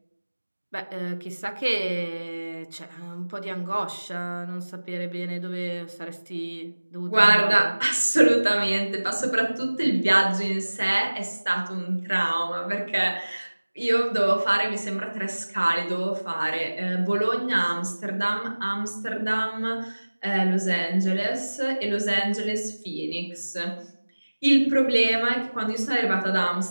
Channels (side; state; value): both; inverted; correlation -1.00